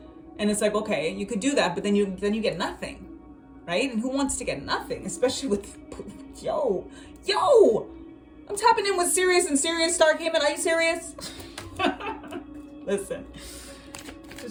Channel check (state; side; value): identical; both; correlation 1.00